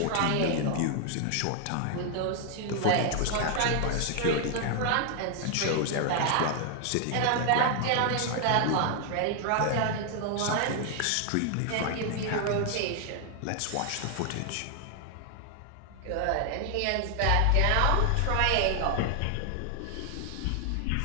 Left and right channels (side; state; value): both; different; correlation 0.00